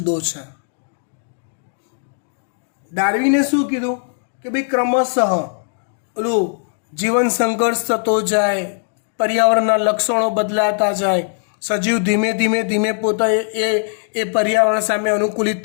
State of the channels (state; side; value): silent; right; 61 dB below the other